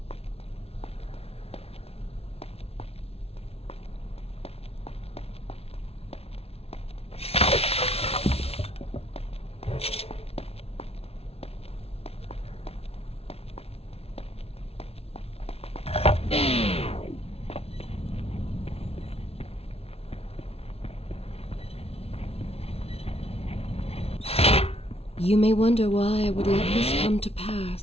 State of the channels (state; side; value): late; right; 0.29 ms